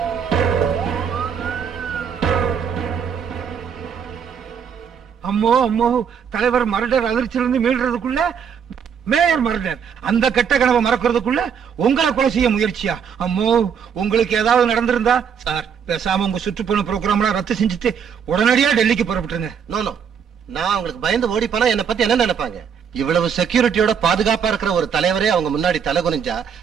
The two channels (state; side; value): quieter; left; 7.3 dB